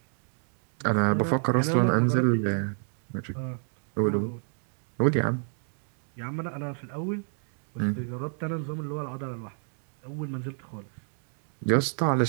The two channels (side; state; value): left; silent; 56 dB below the other